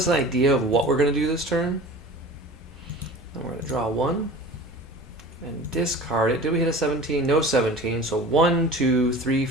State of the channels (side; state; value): both; normal; correlation 0.39